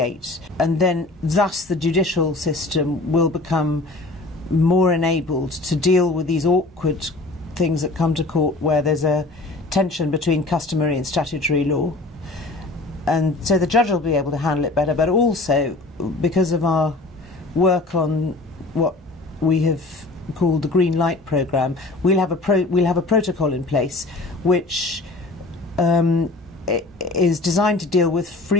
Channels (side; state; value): right; quieter; 3.1 dB